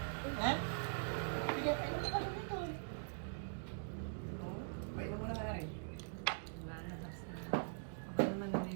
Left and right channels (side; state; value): left; silent; digital silence